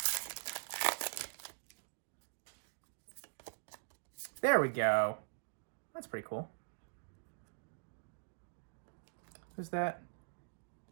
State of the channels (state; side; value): silent; left; digital silence